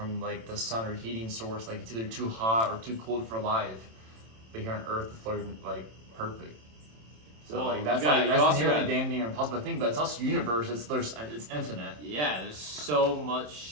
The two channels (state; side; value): late; left; 27 ms